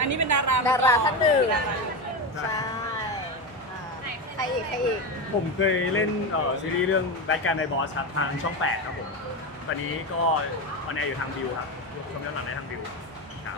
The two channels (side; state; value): both; normal; correlation 0.17